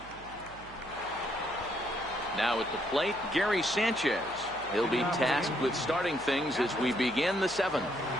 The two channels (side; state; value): right; noise; hum, 20 dB below the sound